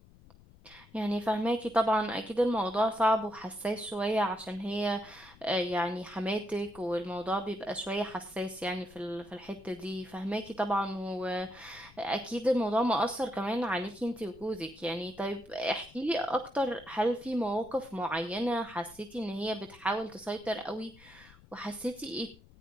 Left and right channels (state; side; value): noise; left; rumble, 24 dB below the sound